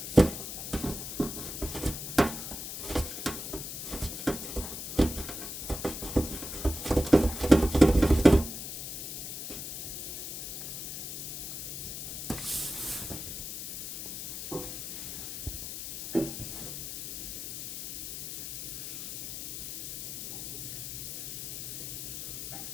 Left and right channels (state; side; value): noise; left; hiss, 6 dB below the sound